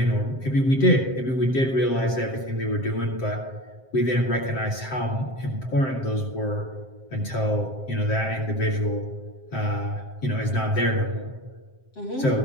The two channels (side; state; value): right; late; 7.6 ms